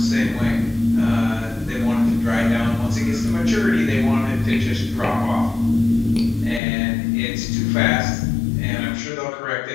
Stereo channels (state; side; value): drops out; right; at 6.6 s